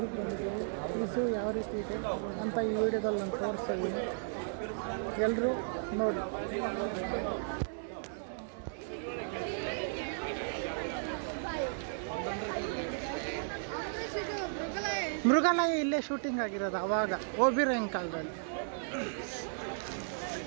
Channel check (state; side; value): silent; left; digital silence